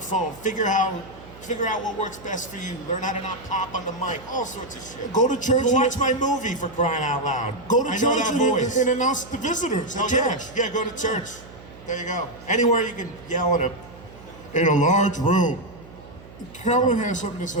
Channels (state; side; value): noise; right; hum, 19 dB below the sound